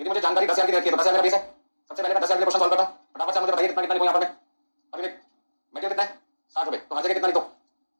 मुझे जानकारी 10000 की रखी है तो 10000 मेरा बेस है। सबसे पहले मैं 10000 के क्वेश्चन सॉल्व करता हूं, फटाफट से मुझे बताइए कितना कितना लिखूं यहां पर मैं। अभी मटेरियल कितना है 60 रुपए, तो हर जगह कितना लिखो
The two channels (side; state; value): both; inverted; correlation -1.00